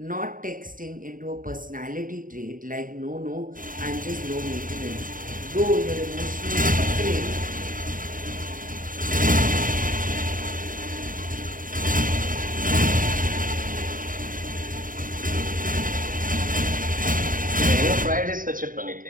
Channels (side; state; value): left; late; 0.40 ms